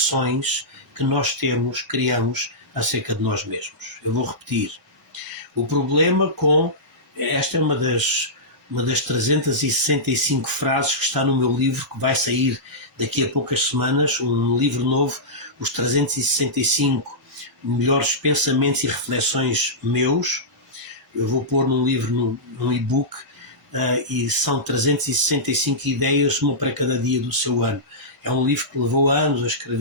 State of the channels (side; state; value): both; normal; correlation -0.14